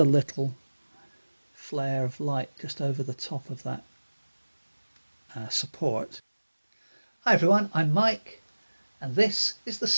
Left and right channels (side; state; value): both; inverted; correlation -1.00